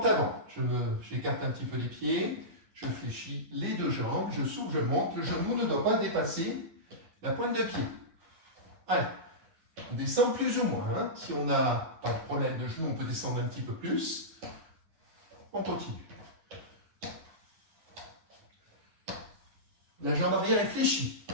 avant. J'écarte un petit peu les pieds. Je fléchis les deux jambes. Je souffle, je monte. Le genou ne doit pas dépasser la pointe de pied. Allez. On descend plus ou moins. Hein. Si on n'a pas de problème de genou, on peut descendre un petit peu plus. On continue. La jambe arrière est fléchie.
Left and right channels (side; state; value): left; late; 10 ms